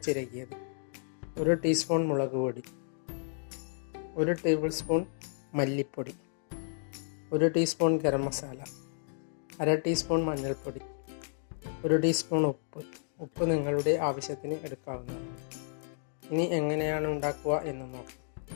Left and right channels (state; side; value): silent; right; digital silence